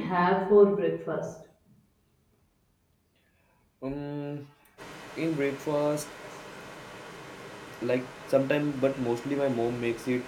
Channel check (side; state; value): both; identical; correlation 1.00